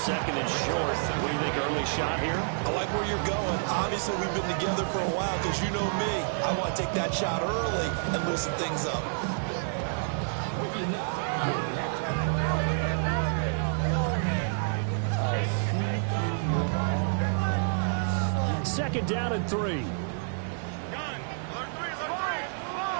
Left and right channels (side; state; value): left; silent; digital silence